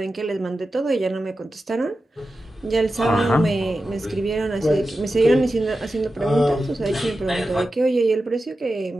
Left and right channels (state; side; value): normal; both; correlation 0.92